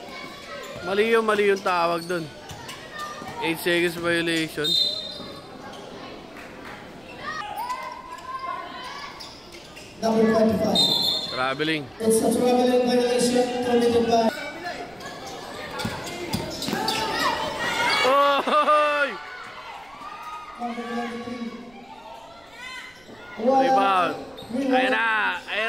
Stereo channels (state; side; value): noise; right; rumble, 29 dB below the sound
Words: Mali yung tawag doon. 8 seconds violation. Number 25. Traveling. It's a traveling violation committed by... Oy! Number 23. Rebound. Ayan na!